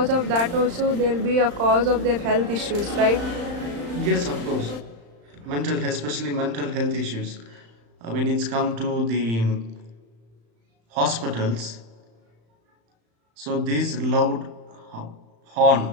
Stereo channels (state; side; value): late; left; 35 ms